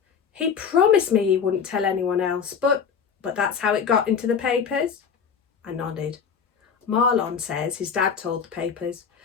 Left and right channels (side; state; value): right; quieter; 6.7 dB